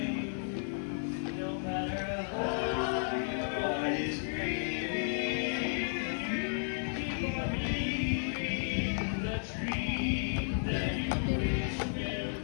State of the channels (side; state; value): right; silent; digital silence